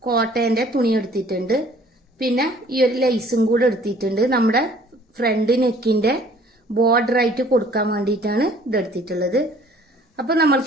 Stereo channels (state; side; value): normal; both; correlation 0.55